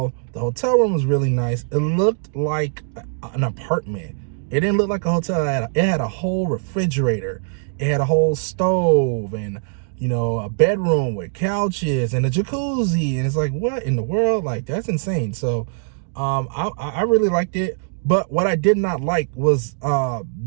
The hotel room was really nice. It looked like an apartment. It didn't look like a hotel. It had a whole refrigerator. It had a whole stove, and you know, a bedroom with couches and a jacuzzi. And it's like, what in the world? Like, that's insane. So I really liked it. But what I did not like was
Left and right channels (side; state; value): left; silent; digital silence